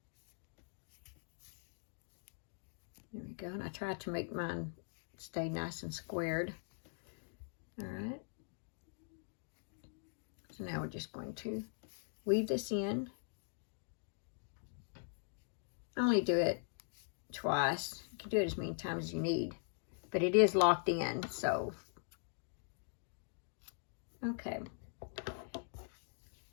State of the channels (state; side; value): silent; right; digital silence